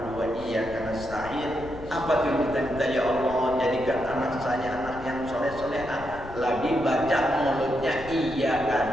wa iyyaka nasta'in, apa tuh kita minta, ya Allah jadikan anak saya anak yang soleh-soleha. Lagi baca mulutnya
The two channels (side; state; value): left; noise; rumble, 14 dB below the sound